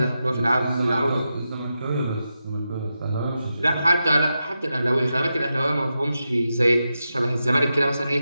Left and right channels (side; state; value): both; inverted; correlation -0.89